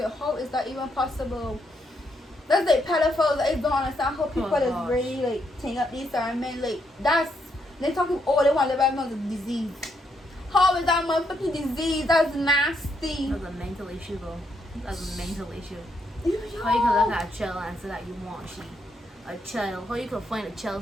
how is that even possible? That's like pedophiles. I don't understand how people is really like taking up these certain men. Like that's they talking. Oh, they want to live out a disease. How is that motherfucking disease? That's nasty. That's a mental issue, though. That's a mental issue. Yo. How you can look at a child and say that you want a child? How you can find a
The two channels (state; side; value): normal; both; correlation 0.77